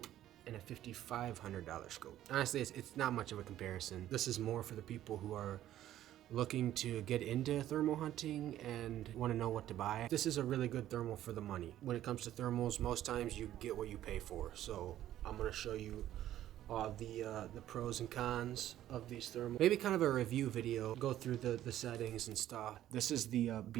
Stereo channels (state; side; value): quieter; left; 12.7 dB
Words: and a $5,500 scope. Honestly, it's not much of a comparison. This is more for the people who are looking to get into thermal hunting and want to know what to buy. This is a really good thermal for the money. When it comes to thermals, most times you get what you pay for. So I'm going to show you the pros and cons of these thermals. Maybe kind of a review video, go through the settings and stuff. This is the